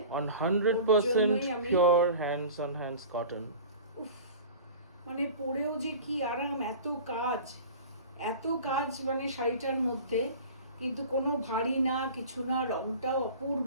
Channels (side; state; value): both; inverted; correlation -0.39